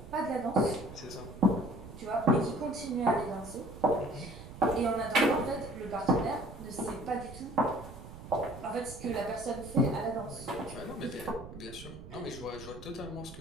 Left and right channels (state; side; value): noise; right; rumble, 14 dB below the sound